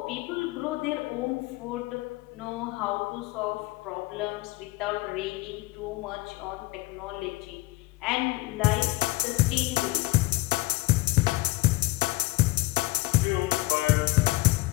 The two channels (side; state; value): right; quieter; 20.2 dB